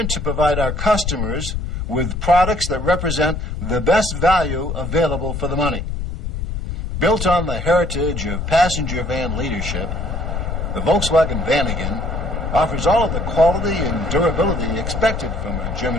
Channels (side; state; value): left; noise; rumble, 3 dB below the sound